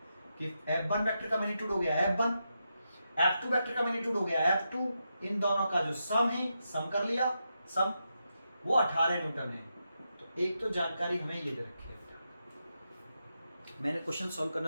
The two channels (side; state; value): both; inverted; correlation -0.86